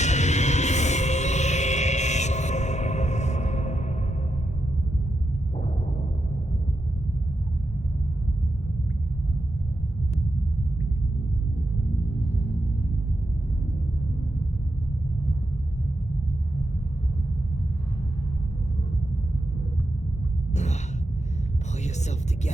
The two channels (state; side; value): normal; both; correlation 0.85